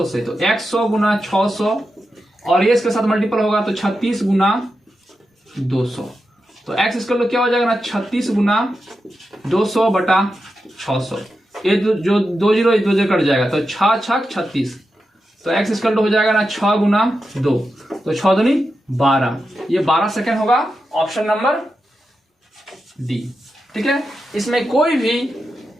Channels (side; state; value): both; normal; correlation 0.89